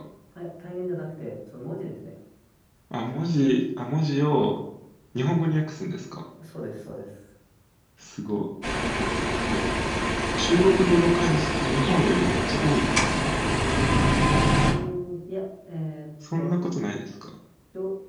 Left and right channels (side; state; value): both; identical; correlation 1.00